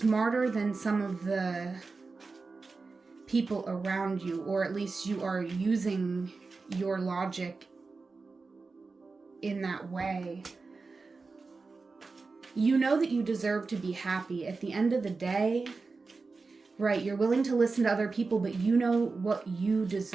than some of the people around you, or at least you are using your logic in that way. You know that you deserve to be happy. At the end of the day, right, you're willing to listen to other people, but you know what you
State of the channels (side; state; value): left; quieter; 4.1 dB